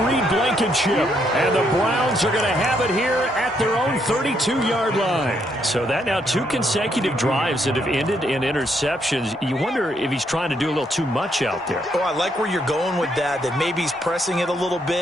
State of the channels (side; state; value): both; normal; correlation 0.74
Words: Reed Blankenship. And the Browns are going to have it here at their own 32-yard line. So that now 2 consecutive drives that have ended in interceptions. You wonder if he's trying to do a little too much out there. Oh, I like where you're going with that maybe he's pressing it a little